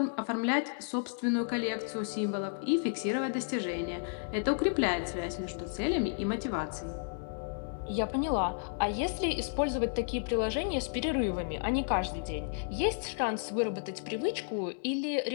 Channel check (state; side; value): silent; right; digital silence